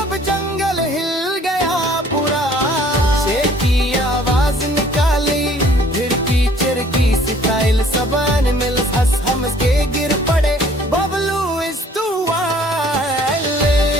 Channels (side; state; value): both; normal; correlation 0.56